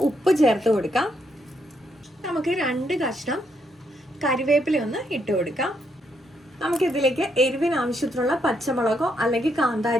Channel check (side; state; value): both; normal; correlation 0.76